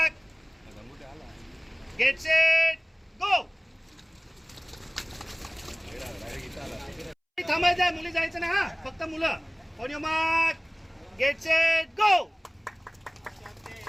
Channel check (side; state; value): both; identical; correlation 1.00